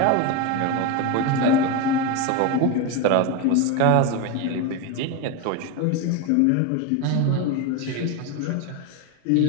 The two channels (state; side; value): different; both; correlation 0.03